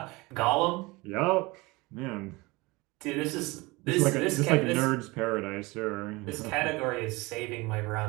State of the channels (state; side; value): quieter; left; 23.4 dB